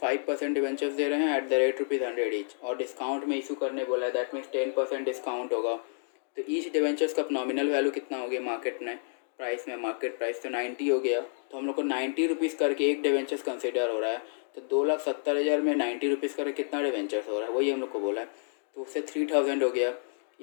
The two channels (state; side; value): silent; right; digital silence